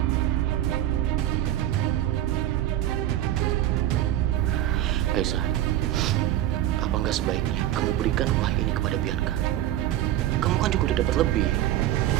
Aisyah, apa nggak sebaiknya kamu berikan rumah ini kepada Bianca? Kamu kan juga udah dapat lebih.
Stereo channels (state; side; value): quieter; left; 13.2 dB